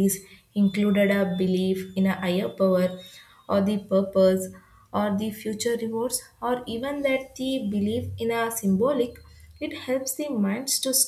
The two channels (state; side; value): identical; both; correlation 1.00